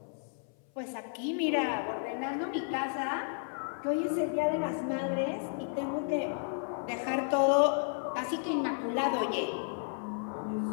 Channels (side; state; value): right; silent; 56 dB below the other